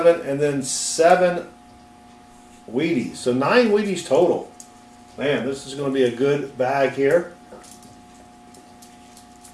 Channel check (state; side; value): identical; both; correlation 1.00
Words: and then 7 Wheaties. So 9 Wheaties total. Man, this is going to be a good bag here.